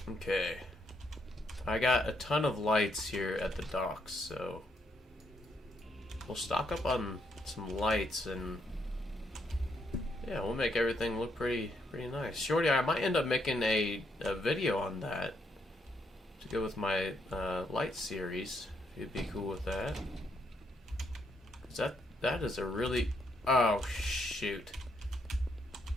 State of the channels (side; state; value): both; normal; correlation 0.75